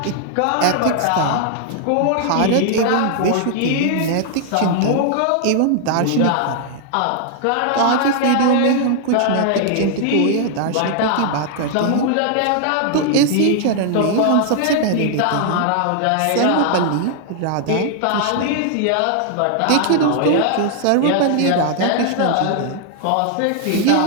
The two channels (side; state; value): both; different; correlation 0.00